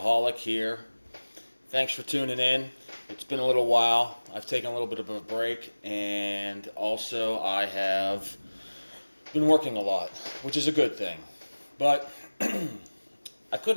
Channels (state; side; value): inverted; both; correlation -1.00